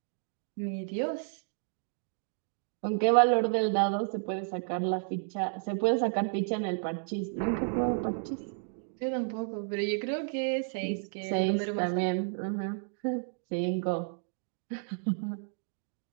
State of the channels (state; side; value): silent; left; digital silence